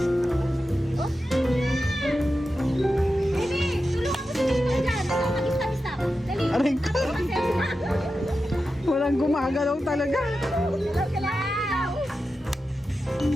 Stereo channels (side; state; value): both; normal; correlation 0.91